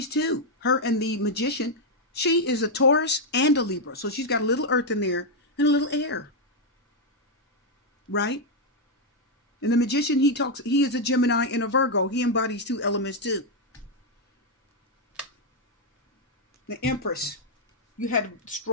two. Her and the Magician. She is a Taurus and a Libra, so she's got a little earth in there and a little air, right? And the Magician, he is a Gemini and a Virgo. He embodies two elements too. The Empress. You had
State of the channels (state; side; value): normal; both; correlation 0.00